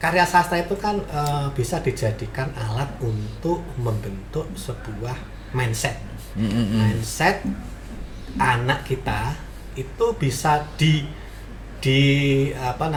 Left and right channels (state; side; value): identical; both; correlation 1.00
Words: karya sastra itu kan bisa dijadikan alat untuk membentuk sebuah mindset. Mindset anak kita itu bisa